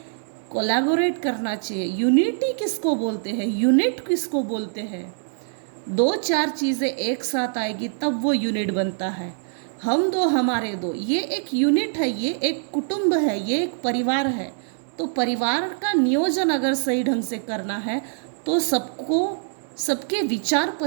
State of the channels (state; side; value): silent; left; digital silence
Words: कोलैबोरेट करना चाहिए। यूनिटी किसको बोलते हैं, यूनिट किसको बोलते हैं। दो चार चीज़ें एक साथ आएगी तब वो यूनिट बनता है। हम दो हमारे दो, ये एक यूनिट है, ये एक कुटुंब है, ये एक परिवार है। तो परिवार का नियोजन अगर सही ढंग से करना है तो सबके विचार